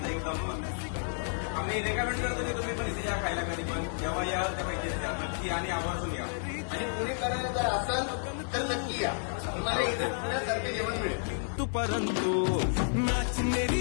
एकदम. आम्ही रेकमेंड करतो की तुम्ही पण इथे या खायला कधी पण जेव्हा याल तेव्हा इथे या नक्की आणि आवर्जून या. आणि पुणेकरांना जर असाल तर नक्की या, तुम्हाला इथे पुण्यासारखे जेवण मिळेल. तू परंतु नाच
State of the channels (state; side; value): silent; right; 57 dB below the other